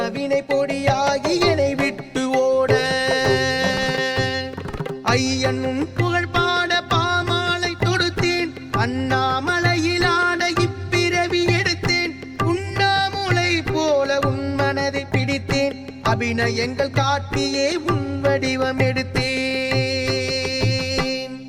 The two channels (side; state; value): both; identical; correlation 1.00